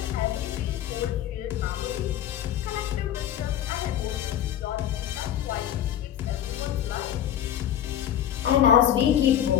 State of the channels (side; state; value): right; quieter; 10.8 dB